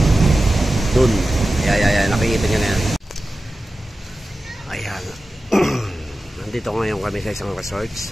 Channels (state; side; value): normal; both; correlation 0.94